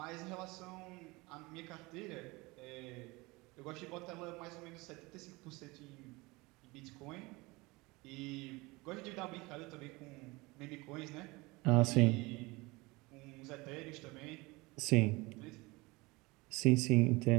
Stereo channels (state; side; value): quieter; left; 23.4 dB